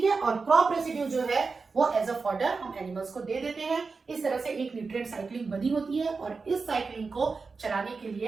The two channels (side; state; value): left; quieter; 4.5 dB